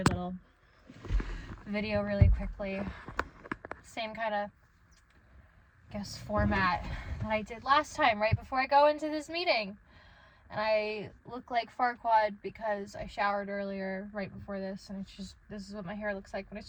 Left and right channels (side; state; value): both; identical; correlation 1.00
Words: little video really quickly. Same kind of, I guess, format that I did last time, right before I go into this meeting. And I look like Farquaad because I showered earlier right before this, and it's just, this is what my hair looks like when